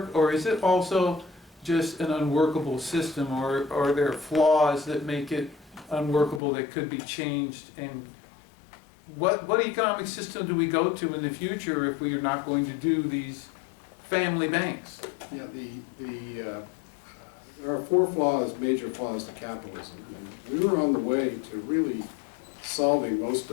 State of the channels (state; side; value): drops out; right; at 6.4 s